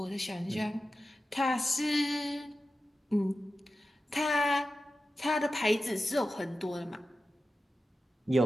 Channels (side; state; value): both; normal; correlation 0.93